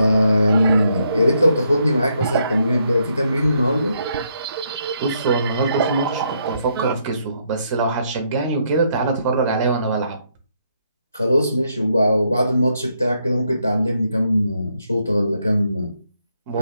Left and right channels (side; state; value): both; inverted; correlation -0.75